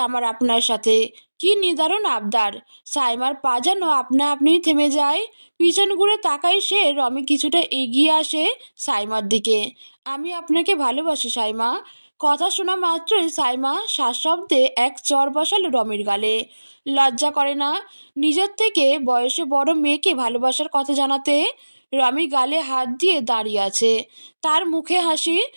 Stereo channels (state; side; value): inverted; both; correlation -1.00